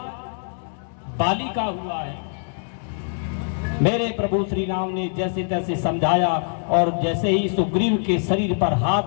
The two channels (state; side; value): silent; right; digital silence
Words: बाली का हुआ है। मेरे प्रभु श्री राम ने जैसे तैसे समझाया और जैसे ही सुग्रीव के शरीर पर